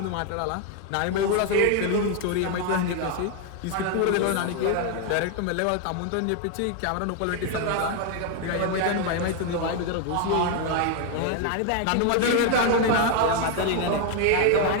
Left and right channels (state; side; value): different; both; correlation 0.01